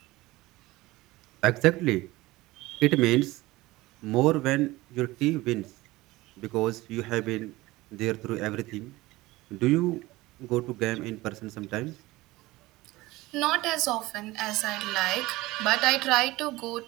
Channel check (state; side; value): quieter; left; 19.4 dB